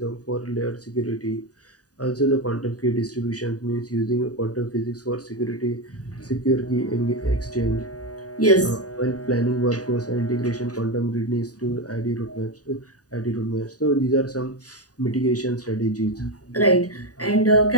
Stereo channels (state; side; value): late; right; 0.68 ms